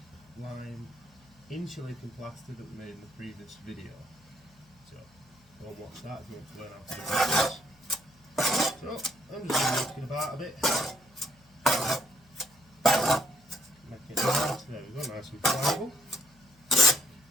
insulating plaster that we made in the previous video. So go and watch that if you want to learn how to do this. So I'm just going to work it about a bit. Make it nice. There we go, nice and pliable.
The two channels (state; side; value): noise; left; hum, 29 dB below the sound